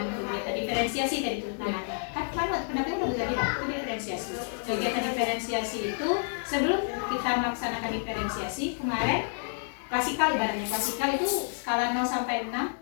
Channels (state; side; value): silent; right; digital silence